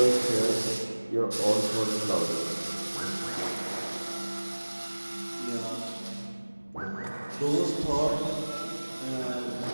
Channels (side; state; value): both; inverted; correlation -1.00